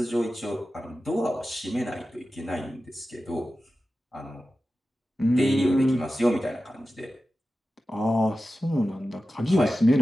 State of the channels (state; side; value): normal; both; correlation 0.94